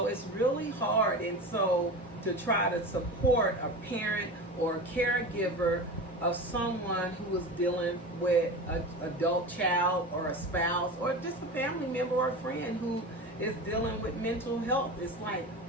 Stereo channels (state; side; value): normal; both; correlation 0.28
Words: it's really hard. And so to try to support a parent or a caregiver of someone who is dealing with an adult child or a spouse or just a family member or a friend who is dealing with mental health. It's like,